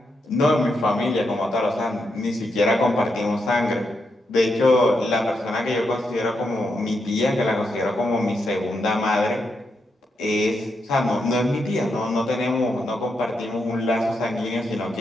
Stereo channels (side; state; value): both; normal; correlation 0.82